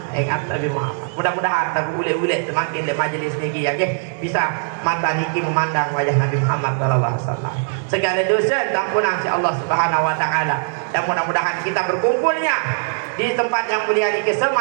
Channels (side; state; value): left; silent; 66 dB below the other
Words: ingat Nabi Muhammad. Mudah-mudahan tak ulet-ulet semakin le majlis ni ya ke bisa mata niki memandang wajah Nabi Muhammad sallallahu alaihi wasallam. Segala dosa ampunan si Allah Subhanahu wa taala. Dan mudah-mudahan kita berkumpulnya di tempat yang mulia ini